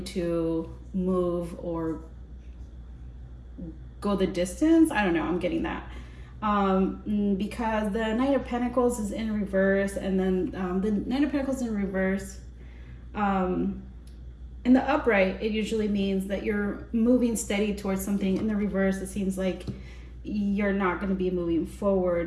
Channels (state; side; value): identical; both; correlation 1.00